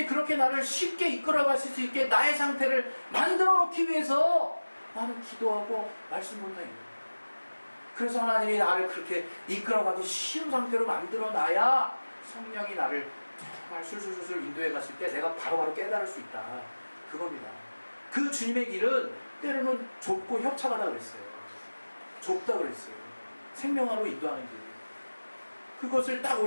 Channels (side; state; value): both; inverted; correlation -1.00